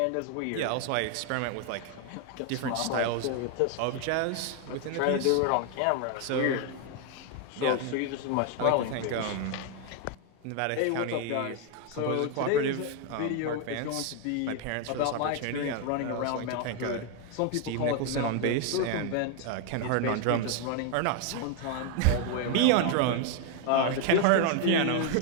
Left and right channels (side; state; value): both; different; correlation 0.01